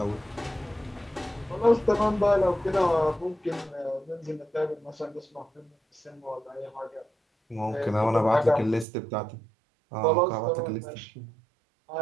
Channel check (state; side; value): drops out; left; at 8.8 s